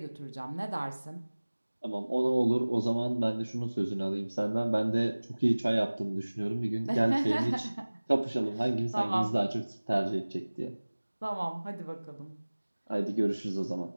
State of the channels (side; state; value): both; inverted; correlation -1.00